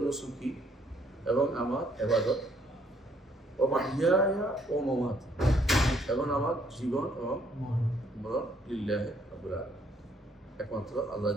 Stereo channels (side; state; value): both; normal; correlation 0.67